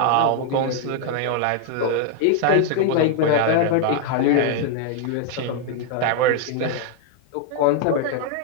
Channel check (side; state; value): both; different; correlation 0.00